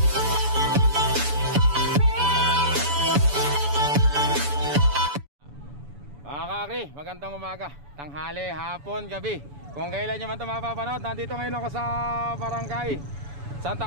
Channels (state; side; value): late; left; 7.0 ms